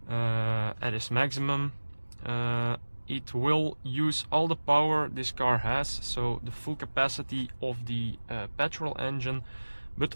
at its maximum, it will use all the power this car has, so the full capacity of the petrol engine, but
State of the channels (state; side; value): inverted; both; correlation -1.00